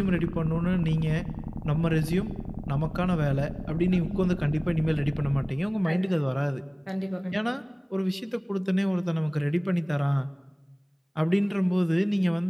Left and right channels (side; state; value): both; identical; correlation 1.00